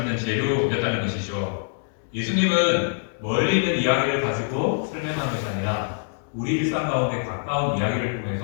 재료였다는 것이죠. 예수님은 멀리 있는 이야기를 가지고 설명한 것이 아니라 우리 일상 가운데 가까운 이야기를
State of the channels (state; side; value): silent; right; digital silence